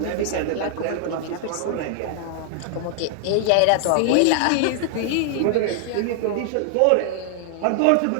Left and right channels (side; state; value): both; different; correlation 0.00